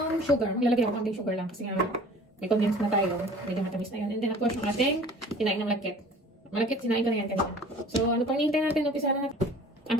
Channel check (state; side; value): normal; both; correlation 0.47